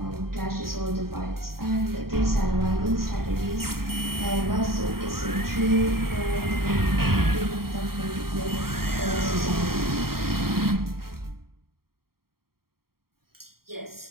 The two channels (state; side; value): late; left; 0.93 ms